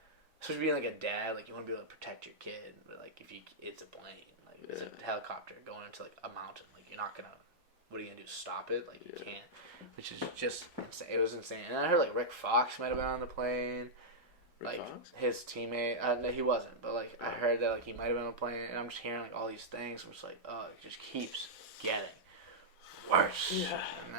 Especially being like a dad, like you want to be able to protect your kid, but like if it's a plane, like it's a helicopter going into like a mountain, like you're not gonna. What are you gonna do? Stop it? Like you can't. Which is just insane. It was insane. And I heard like Rick Fox might have been on the plane. Like his teammate, no, he wasn't. But like I heard that like he might have been on a plane, and I'm just hearing like all these things. I'm just like, oh, it just keeps getting worse. Yeah. And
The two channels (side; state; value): both; normal; correlation -0.09